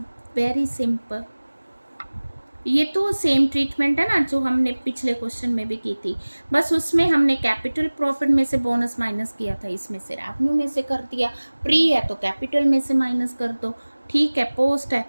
Very simple. ये तो सेम ट्रीटमेंट है ना जो हमने पिछले क्वेश्चन में भी की थी, बस उसमें हमने कैपिटल प्रॉफिट में से बोनस माइनस किया था, इसमें से रेवेन्यू में से कर दिया। प्री है तो कैपिटल में से माइनस कर दो, ठीक है, पोस्ट है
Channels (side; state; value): both; inverted; correlation -1.00